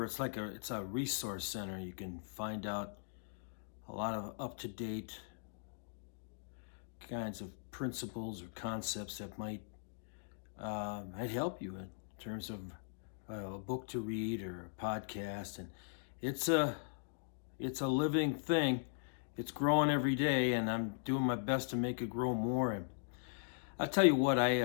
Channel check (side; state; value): right; silent; digital silence